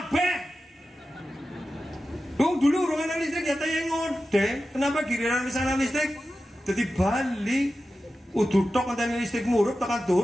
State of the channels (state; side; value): normal; both; correlation 0.93